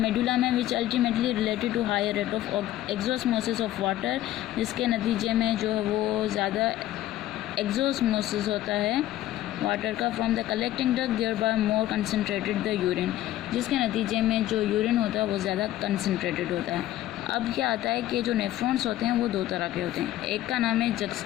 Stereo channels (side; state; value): right; quieter; 14.0 dB